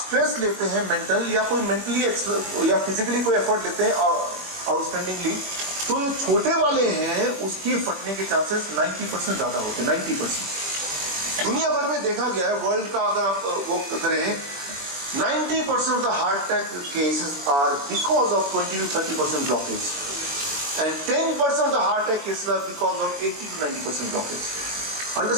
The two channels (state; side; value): late; left; 21 ms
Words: लेते हैं मेंटल या कोई मेंटली या फिजिकली कोई एफर्ट लेते हैं आउटस्टैंडिंगली, तो ये छोटे वाले हैं, उसके फटने के चांसेस 90% ज्यादा होते हैं, 90%। दुनिया भर में देखा गया है, वर्ल्ड का अगर आप वो करें, 90% of the heart attack cases are because of 20 to 30% blockage, and 10% of the heart attack cases are because of 80-90% blockage.